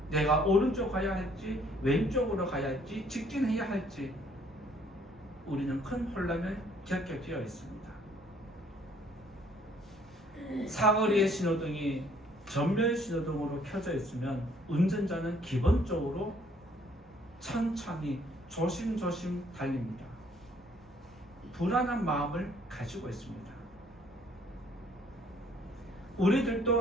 내가 오른쪽 가야 할지 왼쪽으로 가야 할지 직진해야 할지 우리는 큰 혼란을 겪게 되어 있습니다. 사거리의 신호등이 전면 신호등으로 켜져 있으면 운전자는 기본적으로 천천히 조심조심 달립니다. 불안한 마음을 가지고 있습니다.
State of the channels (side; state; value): both; normal; correlation 0.62